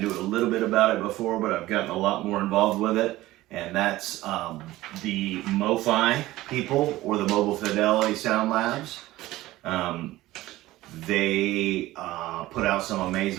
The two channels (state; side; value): quieter; left; 17.0 dB